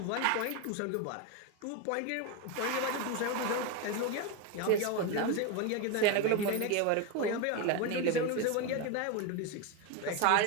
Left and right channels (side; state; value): both; different; correlation 0.02